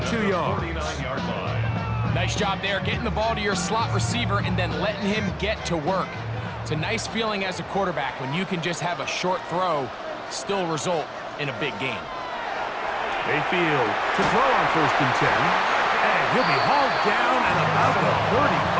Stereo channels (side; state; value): both; identical; correlation 1.00